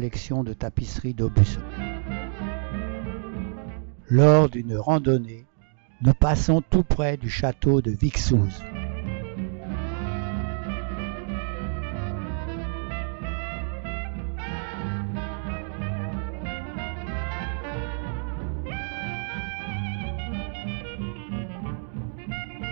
de tapisseries d'Aubusson. Lors d'une randonnée, nous passons tout près du château de Vixouz.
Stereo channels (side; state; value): left; silent; digital silence